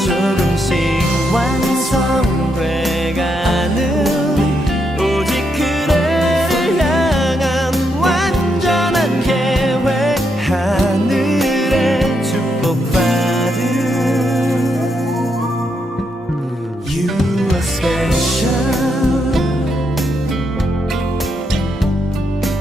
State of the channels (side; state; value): both; normal; correlation 0.80